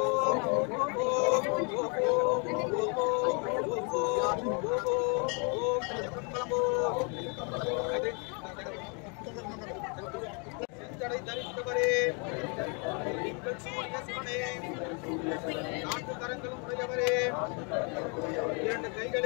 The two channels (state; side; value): quieter; right; 35.3 dB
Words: தரித்தவரே நீங்கள் சூரிய சிவனே நான்கு கரங்களும் உடையவரே இரண்டு